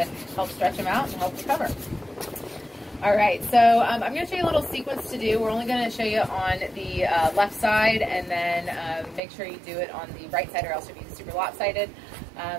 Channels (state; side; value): drops out; left; at 9.2 s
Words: help stretch them out and help recover. All right, so I'm going to show you a little sequence to do. We're only going to show you on the left side, and then make sure you do it on the right side or else you'll be super lopsided.